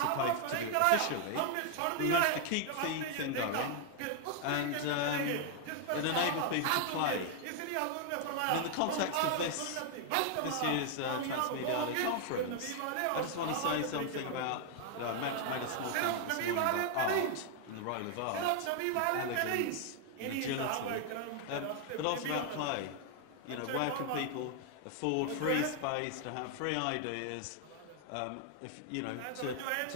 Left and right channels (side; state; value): both; different; correlation 0.00